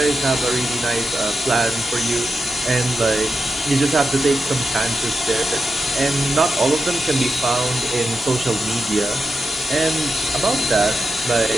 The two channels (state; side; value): noise; right; hiss, 27 dB below the sound